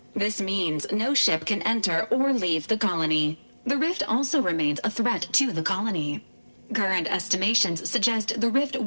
This means no ship can enter or leave the colony. The rift also remains a threat to the colony. Current estimations suggest the rift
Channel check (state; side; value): inverted; both; correlation -1.00